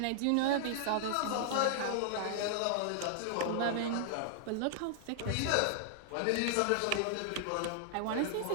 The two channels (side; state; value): both; different; correlation -0.01